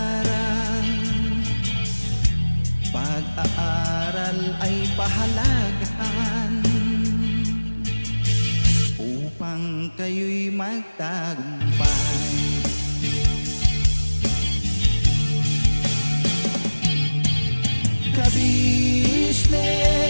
Pag-aaral ay pahalagahan upang kayo'y magtagumpay.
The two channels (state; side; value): inverted; both; correlation -1.00